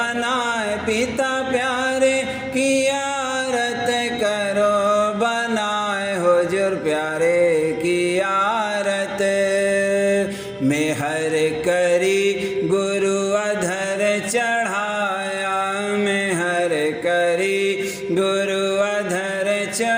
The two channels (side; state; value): both; identical; correlation 1.00